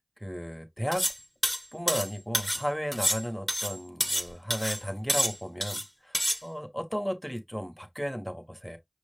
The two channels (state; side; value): identical; both; correlation 1.00